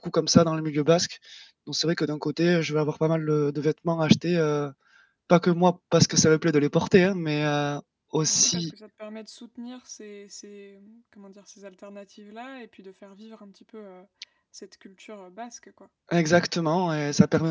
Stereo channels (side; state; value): both; identical; correlation 1.00